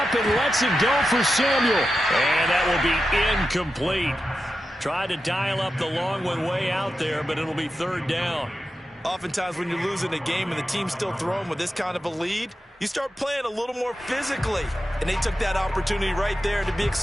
and lets it go for Samuel. And that will be incomplete. Tried to dial up the long one way out there, but it'll be third down. Oftentimes when you're losing a game and the team's still throwing with this kind of a lead, you start playing a little more physically. And they took that opportunity right there to be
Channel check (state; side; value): normal; both; correlation 0.90